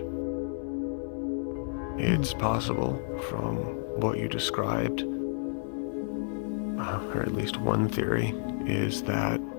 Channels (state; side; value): silent; right; digital silence